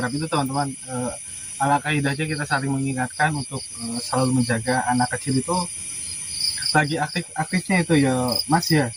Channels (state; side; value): identical; both; correlation 1.00